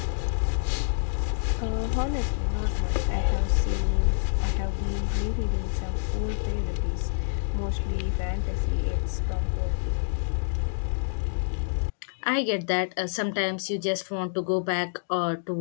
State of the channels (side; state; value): right; silent; digital silence